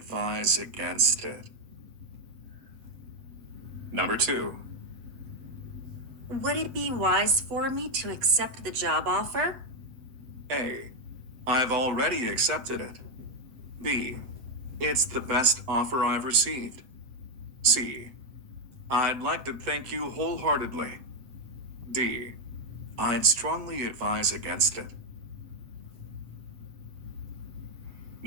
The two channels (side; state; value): left; late; 7.9 ms